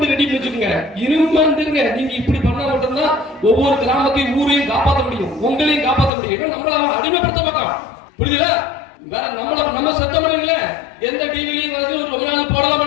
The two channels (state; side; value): drops out; right; at 6.1 s